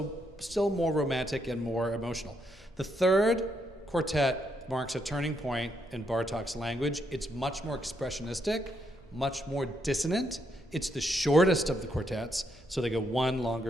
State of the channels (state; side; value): normal; both; correlation 0.77